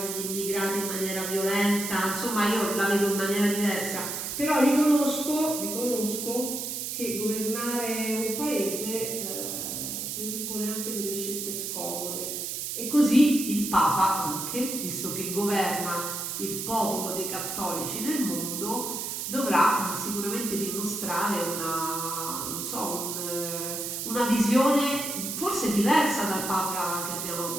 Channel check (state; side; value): noise; right; hiss, 4 dB below the sound